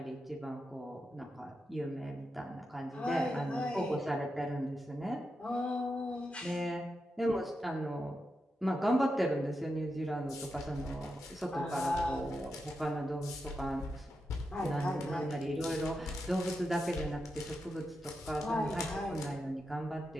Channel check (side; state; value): both; normal; correlation 0.87